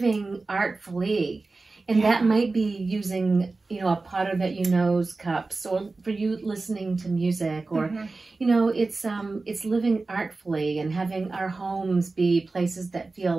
artfully. And that might be using, you know, a potter that you know's cups, or for you listening to music, or, you know, it's living artfully and having our homes be places that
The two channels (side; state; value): left; quieter; 3.6 dB